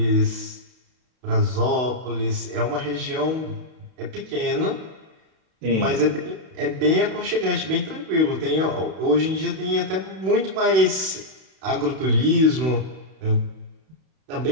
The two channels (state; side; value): late; left; 32 ms